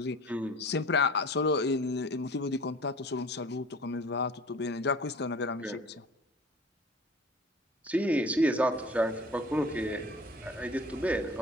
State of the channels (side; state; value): both; normal; correlation 0.43